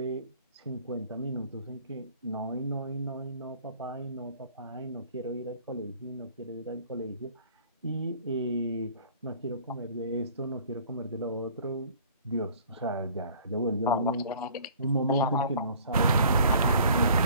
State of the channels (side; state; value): both; inverted; correlation -0.51